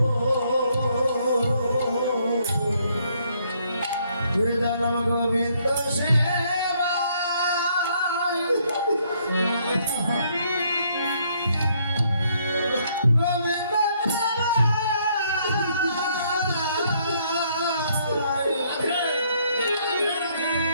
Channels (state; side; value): inverted; both; correlation -0.69